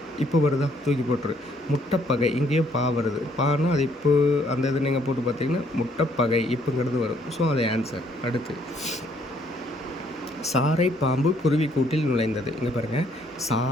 இப்போ வருதா? தூக்கி போட்டுரு. முட்டைப்பகை இங்கேயும் பா வருது. பானா அது இப்போ அந்த இது நீங்கள் போட்டு பார்த்தீங்கன்னா முட்டைப்பகை இப்போங்கிறது வரும். ஸோ அது ஆன்சர். அடுத்து சாரை பாம்பு குருவி கூட்டில் நுழைந்தது. இங்கே பாருங்கள்.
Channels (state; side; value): normal; both; correlation 0.66